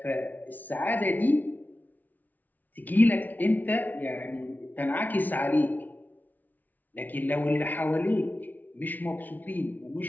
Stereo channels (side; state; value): right; late; 0.080 ms